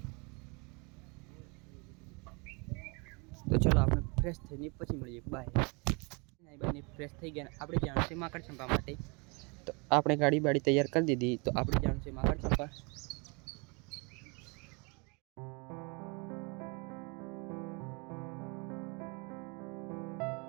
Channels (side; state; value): left; quieter; 30.6 dB